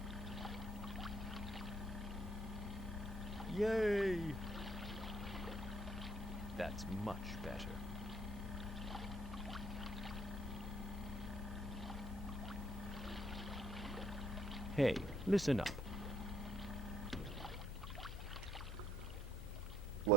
Yay! That's much better. Hey, listen up.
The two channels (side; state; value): right; noise; hum, 16 dB below the sound